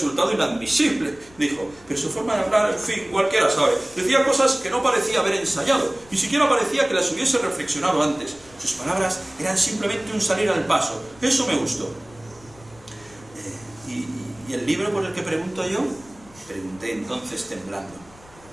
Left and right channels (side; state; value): left; noise; rumble, 25 dB below the sound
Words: inadmisible, dijo. Pero su forma de hablar, en fin, cualquiera sabe. Decía cosas que no parecía haber ensayado. Ni siquiera parecía que las hubiese reflexionado antes. Sus palabras eran simplemente un salir al paso. Eso me gustó. ¿Y el libro por el que pregunto yo? Pregunté entonces temblando.